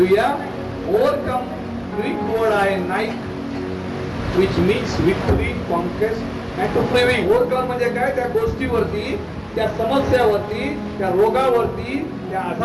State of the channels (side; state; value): both; identical; correlation 1.00